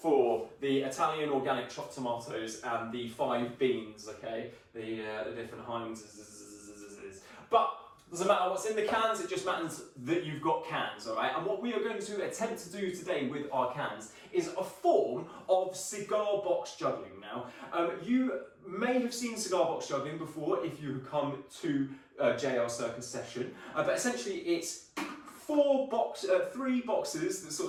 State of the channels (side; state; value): both; identical; correlation 1.00